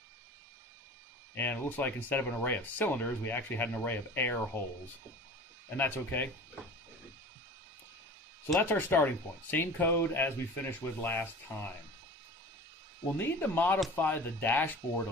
And it looks like instead of an array of cylinders, we actually had an array of air holes. And that's okay. So that's our starting point. Same code as we finished with last time. We'll need to modify the dashboard a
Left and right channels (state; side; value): normal; both; correlation 0.39